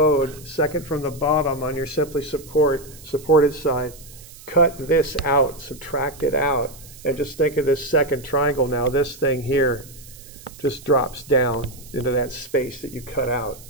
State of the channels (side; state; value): right; noise; hiss, 20 dB below the sound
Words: second from the bottom on your simply supported side, cut this out, subtract it out, and just think of this second triangle now. This thing here just drops down into that space that you cut out.